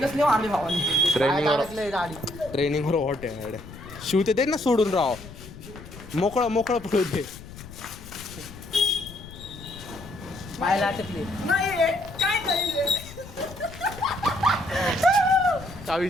मारली भावानी. ट्रेनिंगवर हॉट आहे शिव ते दे ना सोडून राव. मोकळं पडू दे. पाहायला अटकली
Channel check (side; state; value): left; noise; rumble, 16 dB below the sound